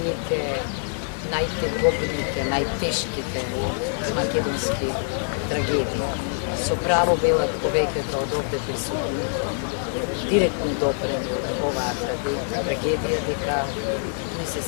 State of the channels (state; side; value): silent; right; 58 dB below the other